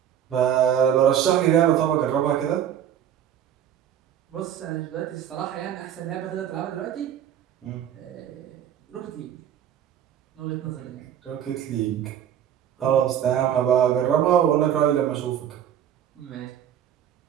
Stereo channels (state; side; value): quieter; left; 9.9 dB